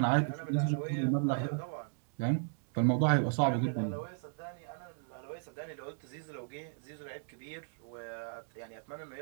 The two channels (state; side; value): silent; left; digital silence